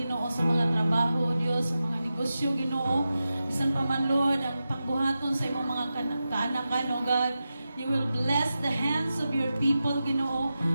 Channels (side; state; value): both; inverted; correlation -0.92